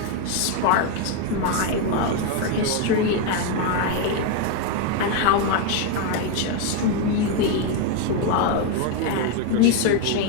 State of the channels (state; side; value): different; both; correlation 0.02